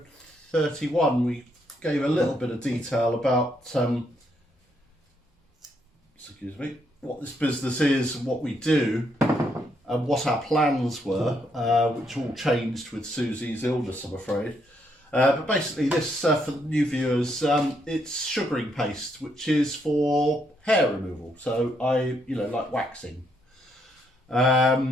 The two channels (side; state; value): both; normal; correlation 0.75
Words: 31. We gave a little bit of detail about what this business is and what we do and what our plans were, which all changed with Susie's illness, I'm afraid. But basically this, for the new viewers, it's sugaring paste, which is for hair removal. So like waxing.